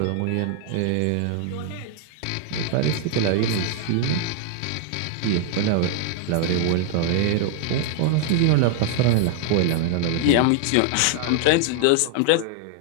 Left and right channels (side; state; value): both; different; correlation 0.00